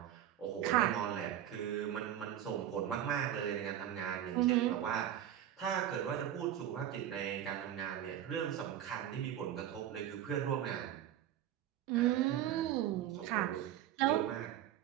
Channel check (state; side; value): quieter; left; 11.3 dB